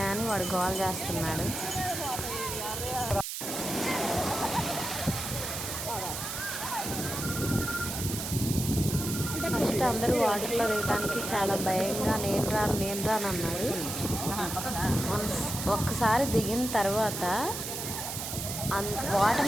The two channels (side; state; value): right; noise; hiss, 5 dB below the sound